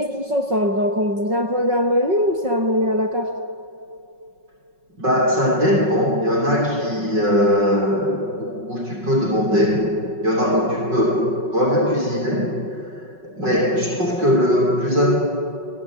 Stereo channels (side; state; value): left; late; 5.4 ms